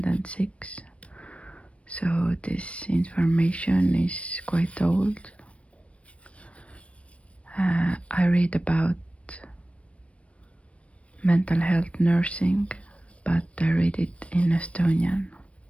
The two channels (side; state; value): right; late; 0.062 ms